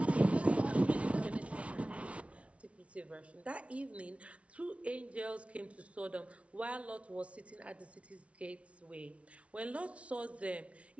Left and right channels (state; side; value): late; left; 0.063 ms